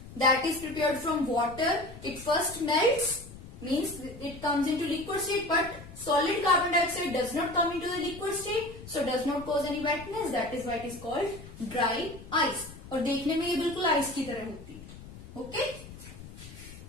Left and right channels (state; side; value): noise; left; rumble, 16 dB below the sound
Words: that is prepared from water, it first melts, means it comes into liquid state, but solid carbon dioxide does not come into the liquid state, so does not cause any wetness. That is why it is called dry ice. और देखने में ये बिल्कुल ice की तरह होती है. Okay?